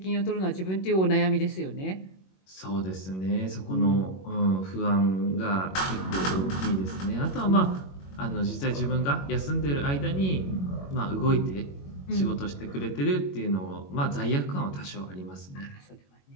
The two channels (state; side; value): late; right; 21 ms